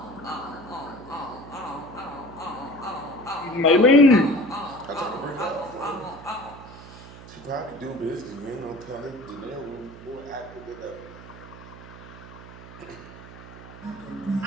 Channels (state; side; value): noise; right; hum, 16 dB below the sound